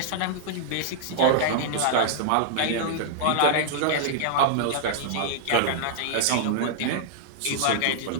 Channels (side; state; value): both; different; correlation -0.01